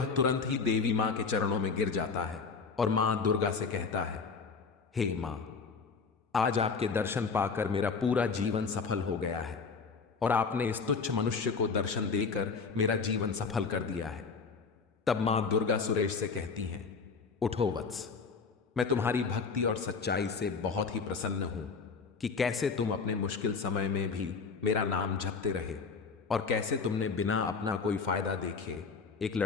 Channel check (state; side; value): quieter; right; 5.0 dB